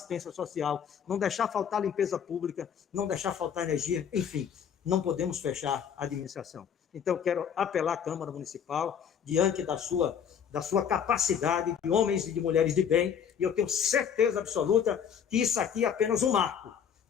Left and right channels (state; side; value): quieter; right; 7.9 dB